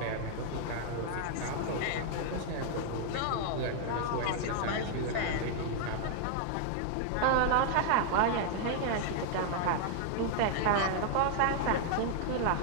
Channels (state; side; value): different; both; correlation 0.00